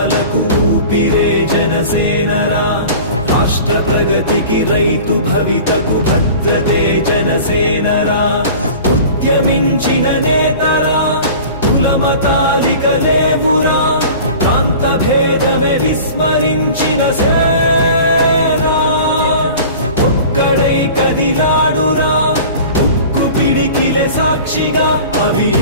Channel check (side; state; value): both; inverted; correlation -0.40